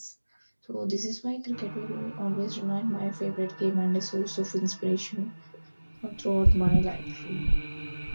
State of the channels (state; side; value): inverted; both; correlation -1.00